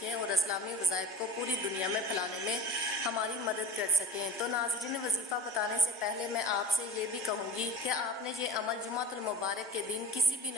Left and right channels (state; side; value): normal; both; correlation 0.37